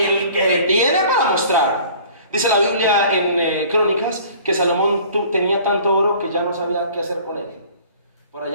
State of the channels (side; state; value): both; inverted; correlation -0.49